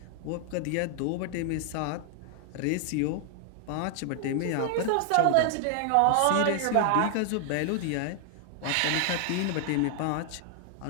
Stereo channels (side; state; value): both; different; correlation 0.00